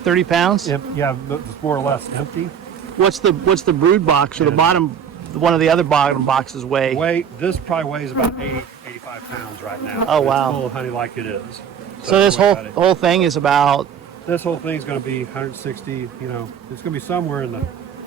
pounds. Yeah, it's more or less empty. What's the brood box or the bottom? One of the other bottom boxes weigh? This probably weighs about 85 pounds right now. Oh wow! It's full of honey like it is. So this whole thing is about. This whole thing is going to be 160. You know, it's going to be somewhere in the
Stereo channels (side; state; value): left; quieter; 7.9 dB